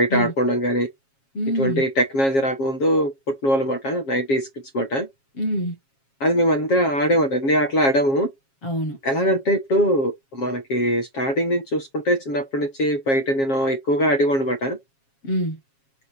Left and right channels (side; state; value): right; late; 7.3 ms